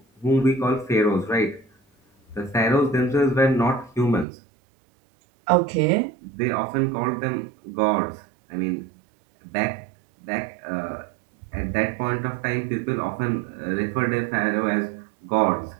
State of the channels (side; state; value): left; drops out; at 4.2 s